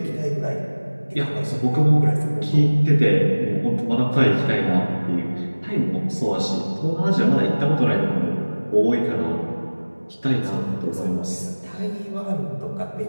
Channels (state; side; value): inverted; both; correlation -1.00